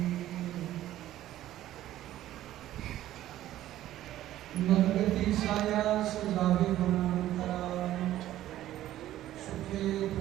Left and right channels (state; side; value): quieter; left; 13.6 dB